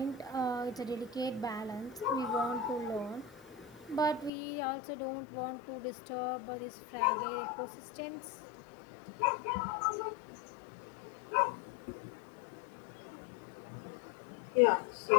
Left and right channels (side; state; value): right; drops out; at 4.3 s